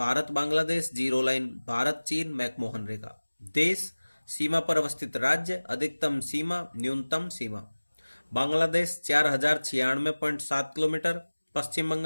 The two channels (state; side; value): inverted; both; correlation -1.00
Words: बांग्लादेश जीरो लाइन, भारत चीन मैकमोहन रेखा। देश सीमा पर अवस्थित राज्य अधिकतम सीमा न्यूनतम सीमा बांग्लादेश 4096.7 किलोमीटर, पश्चिम